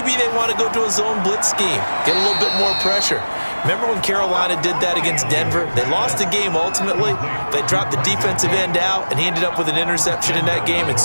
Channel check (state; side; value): inverted; both; correlation -1.00